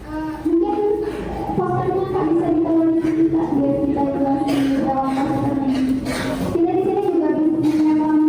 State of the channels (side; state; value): both; identical; correlation 1.00